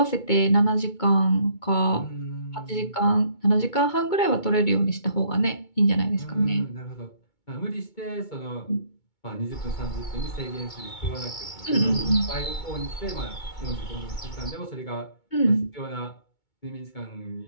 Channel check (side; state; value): right; late; 2.2 ms